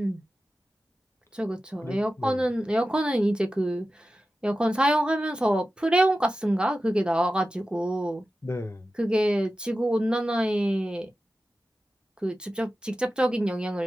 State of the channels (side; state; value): both; normal; correlation 0.93